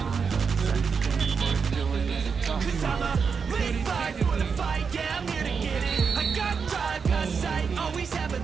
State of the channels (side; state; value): left; quieter; 5.8 dB